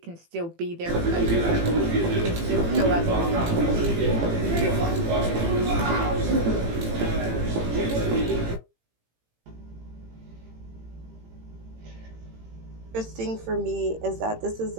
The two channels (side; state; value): left; late; 18 ms